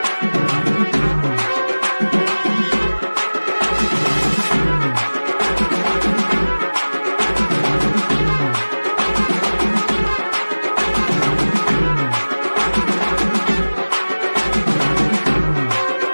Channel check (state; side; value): inverted; both; correlation -1.00